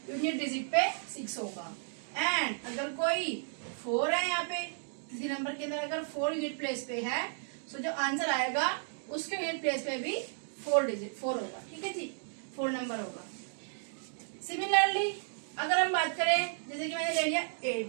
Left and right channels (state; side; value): silent; left; digital silence